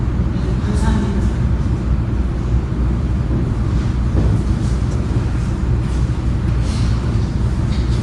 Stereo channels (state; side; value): identical; both; correlation 1.00